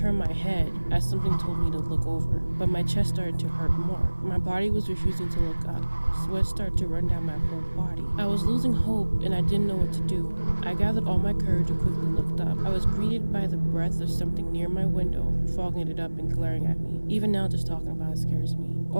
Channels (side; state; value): both; inverted; correlation -1.00